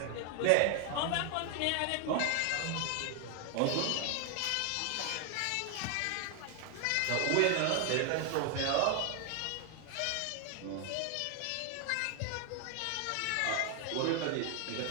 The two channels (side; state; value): both; different; correlation 0.01